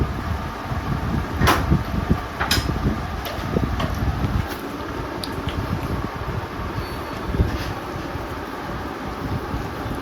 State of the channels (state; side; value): identical; both; correlation 1.00